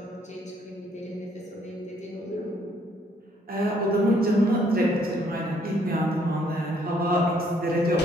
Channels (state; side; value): normal; both; correlation 0.66